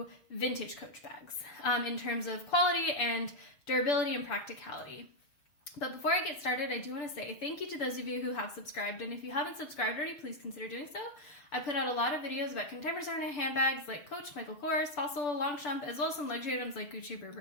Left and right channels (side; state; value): right; late; 6.9 ms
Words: vintage Coach bags in terms of quality and durability and practicality. But before I get started, I do want to say thank you to those of you who have subscribed, and if you haven't subscribed already, please consider doing so. I put out a lot of videos about contemporary handbags like Coach, Michael Kors, Fossil, Longchamp, as well as some luxury items like Gucci,